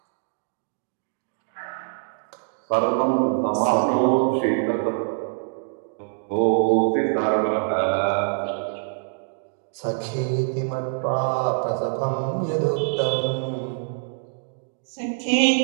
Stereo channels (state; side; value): silent; left; digital silence